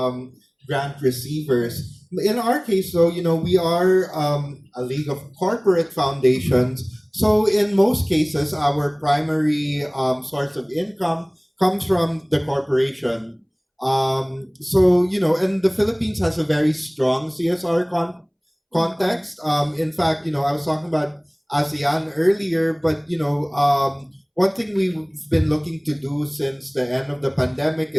grant receivers. In our case, though, we are a league of corporate foundations. So in most cases, our primary source of income comes from the corporation. And the Philippines has a very strong CSR context. In fact, I was talking about ASEAN earlier, but one thing we've been looking to do since the end of the pandemic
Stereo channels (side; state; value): both; identical; correlation 1.00